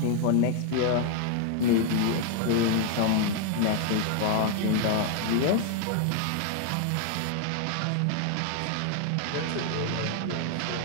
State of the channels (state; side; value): different; both; correlation 0.00